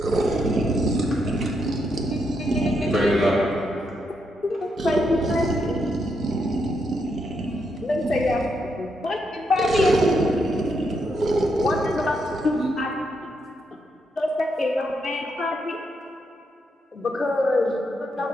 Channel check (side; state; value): both; normal; correlation 0.80